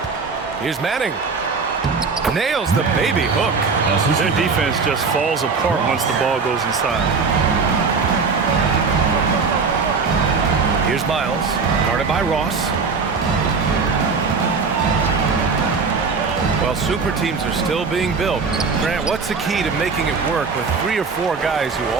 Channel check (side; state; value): left; quieter; 4.9 dB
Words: Here's Manning. Nails the baby hook. Their defense just falls apart once the ball goes inside. Here's Miles, guarded by Ross. Well, super teams are still being built. Grant, what's the key to making it work with 3 or 4 guys who